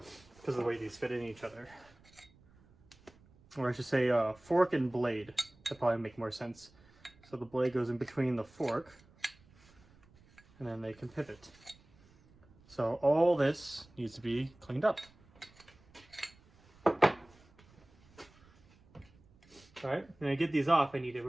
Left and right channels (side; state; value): right; noise; rumble, 28 dB below the sound